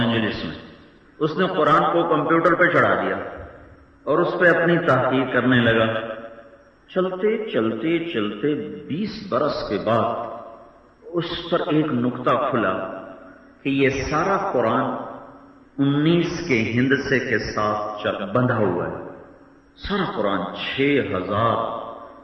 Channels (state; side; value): identical; both; correlation 1.00